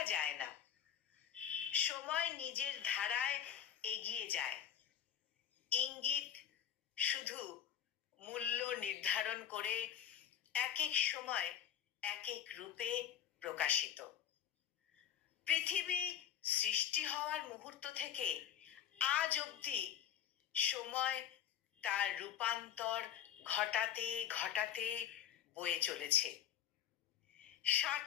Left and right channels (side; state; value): right; quieter; 9.6 dB